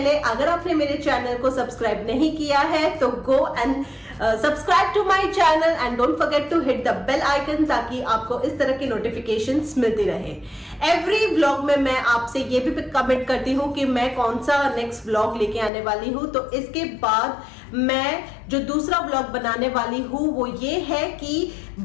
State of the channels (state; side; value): drops out; right; at 15.7 s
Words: अगर आपने मेरे चैनल को सब्सक्राइब नहीं किया है तो go and subscribe to my channel and don't forget to hit the bell icon, ताकि आपको इस तरह की नोटिफिकेशंस मिलती रहे। एवरी व्लॉग में मैं आपसे ये भी कमेंट करती हूँ कि मैं कौन सा नेक्स्ट व्लॉग लेके आने वाली हूँ। तो इसके बाद मैं जो दूसरा व्लॉग बनाने वाली हूँ वो ये है कि